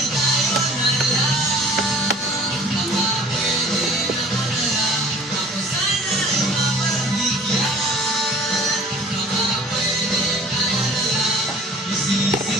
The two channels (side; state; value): both; normal; correlation 0.48